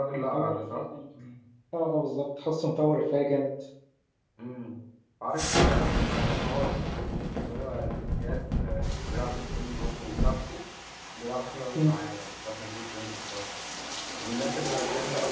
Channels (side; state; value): both; identical; correlation 1.00